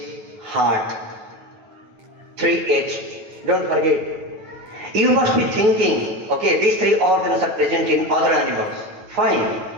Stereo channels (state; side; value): late; left; 9.1 ms